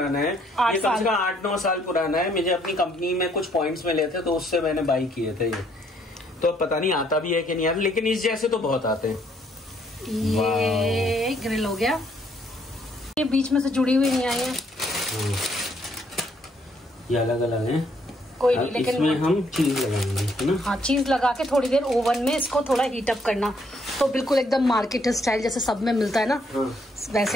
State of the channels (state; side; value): normal; both; correlation 0.69